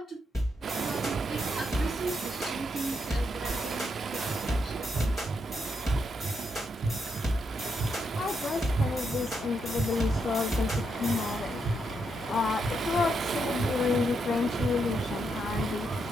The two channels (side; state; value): both; normal; correlation 0.80